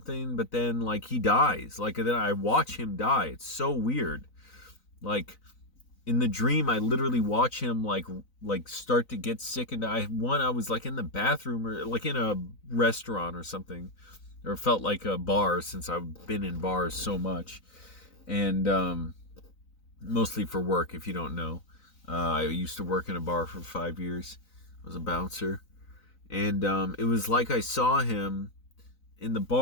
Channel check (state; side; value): late; right; 3.9 ms